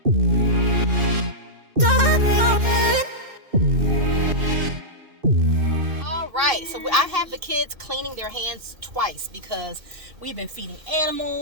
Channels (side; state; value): left; late; 2.6 ms